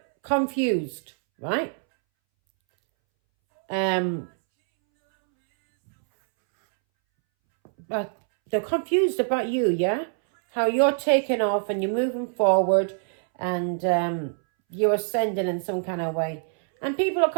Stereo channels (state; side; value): silent; left; 62 dB below the other